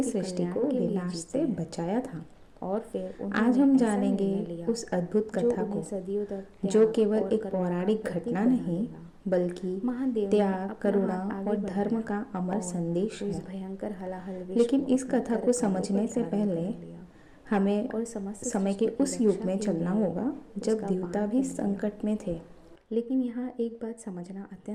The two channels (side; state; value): both; identical; correlation 1.00